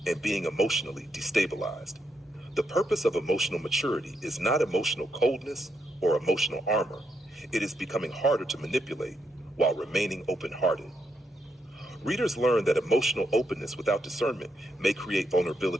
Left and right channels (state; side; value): normal; both; correlation 0.79